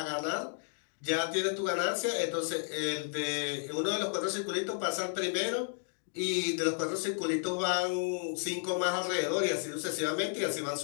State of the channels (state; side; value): silent; right; 56 dB below the other